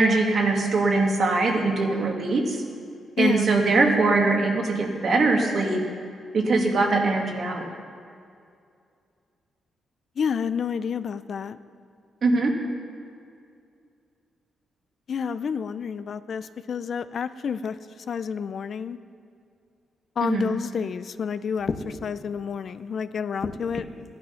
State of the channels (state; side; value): normal; both; correlation 0.79